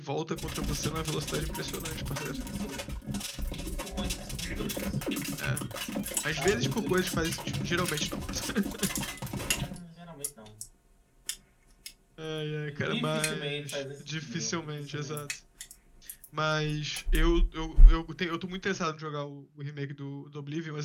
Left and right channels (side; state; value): both; identical; correlation 1.00